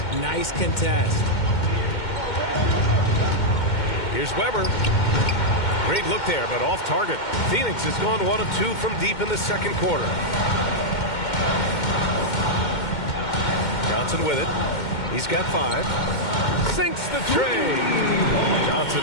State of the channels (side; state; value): right; late; 2.1 ms